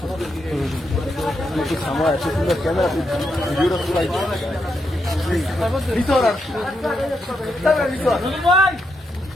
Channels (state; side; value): normal; both; correlation 0.82